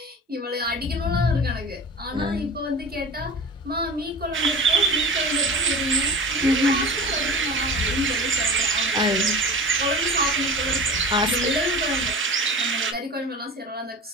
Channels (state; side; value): normal; both; correlation 0.35